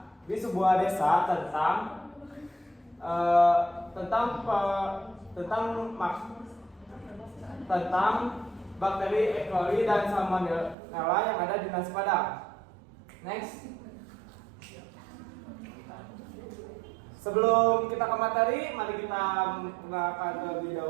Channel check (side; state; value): left; drops out; at 10.8 s